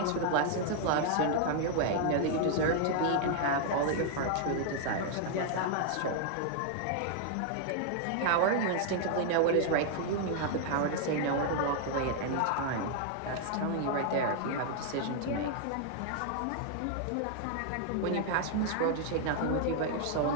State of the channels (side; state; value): both; different; correlation 0.00